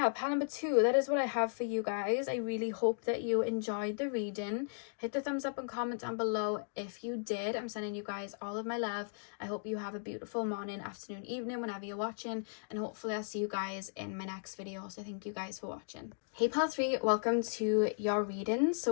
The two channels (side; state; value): right; silent; digital silence